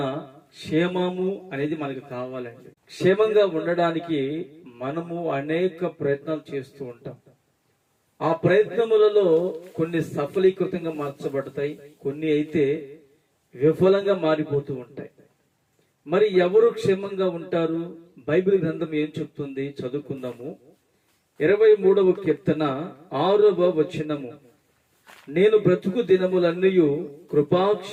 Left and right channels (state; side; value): identical; both; correlation 1.00